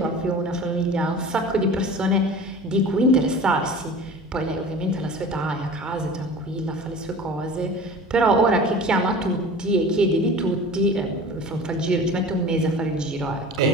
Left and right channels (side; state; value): both; normal; correlation 0.39